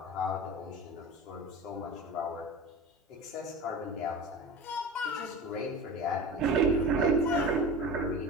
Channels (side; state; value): both; normal; correlation 0.32